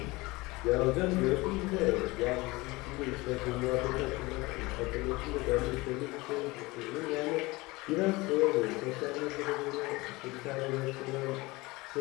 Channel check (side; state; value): right; quieter; 22.3 dB